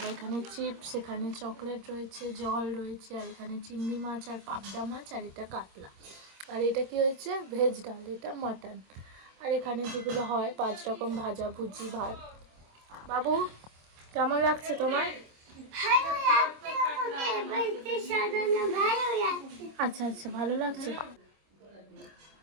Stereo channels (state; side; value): late; left; 25 ms